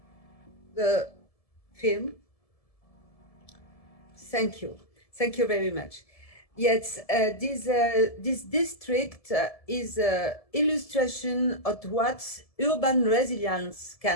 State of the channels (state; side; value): late; right; 1.7 ms